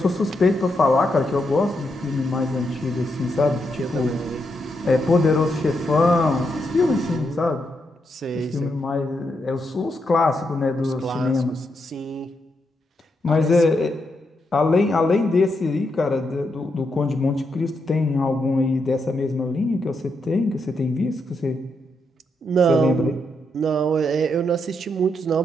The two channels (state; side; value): normal; both; correlation 0.81